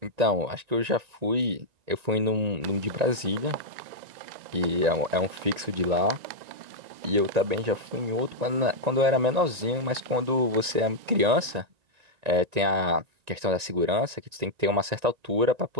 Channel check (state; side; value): late; left; 1.9 ms